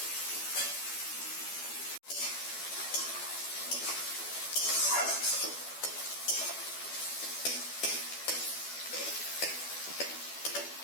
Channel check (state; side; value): late; right; 12 ms